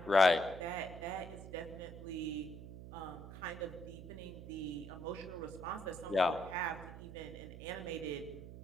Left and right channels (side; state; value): right; noise; hum, 12 dB below the sound